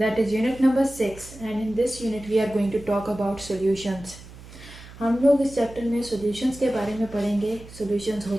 is unit number 6, and in this unit we are going to talk about solutions. हम लोग इस चैप्टर में सॉल्यूशंस के बारे में पढ़ेंगे, सॉल्यूशंस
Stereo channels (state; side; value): noise; right; hum, 18 dB below the sound